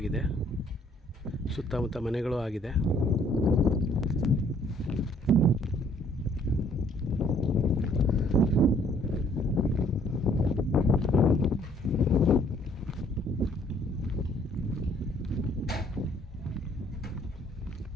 ಸುತ್ತಮುತ್ತ ಮನೆಗಳು ಆಗಿದೆ.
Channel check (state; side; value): normal; both; correlation 0.62